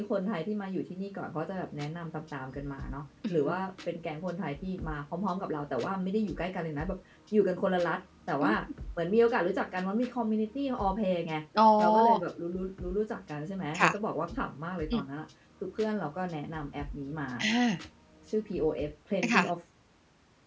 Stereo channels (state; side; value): identical; both; correlation 1.00